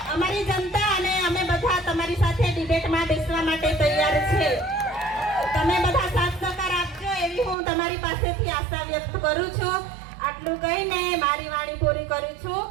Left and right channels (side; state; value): left; drops out; at 7.6 s